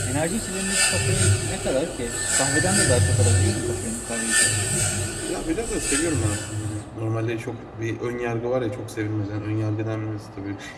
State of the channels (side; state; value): both; identical; correlation 1.00